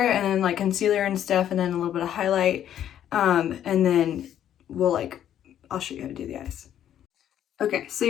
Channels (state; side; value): quieter; right; 10.6 dB